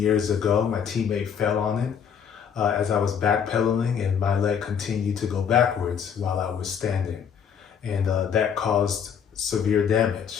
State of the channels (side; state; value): right; quieter; 7.5 dB